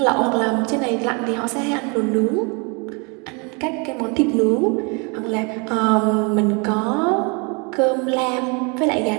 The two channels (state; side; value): quieter; left; 32.1 dB